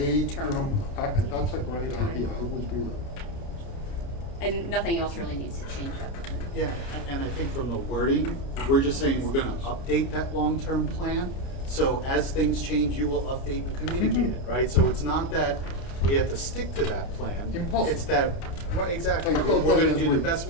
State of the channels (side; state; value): right; late; 29 ms